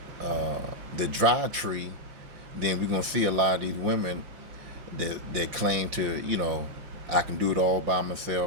dry tree, then we're going to see a lot of these women that claim to, I can do it all by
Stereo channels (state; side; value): late; left; 5.7 ms